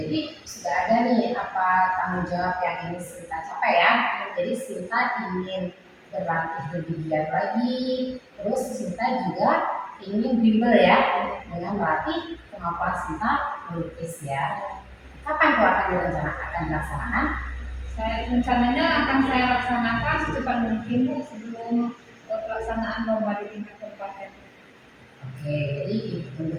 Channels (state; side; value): identical; both; correlation 1.00